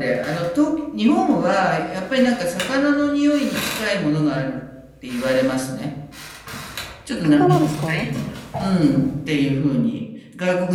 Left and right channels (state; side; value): identical; both; correlation 1.00